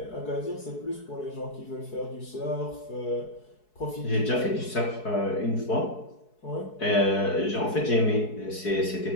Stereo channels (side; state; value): right; late; 4.7 ms